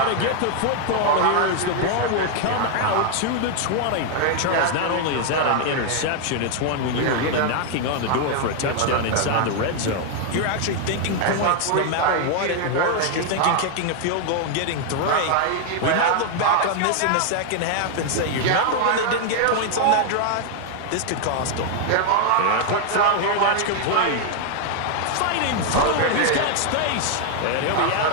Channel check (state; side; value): different; both; correlation 0.00